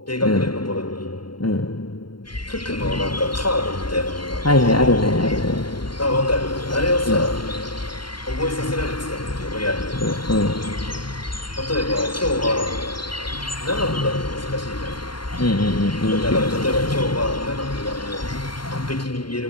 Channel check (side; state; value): right; late; 0.72 ms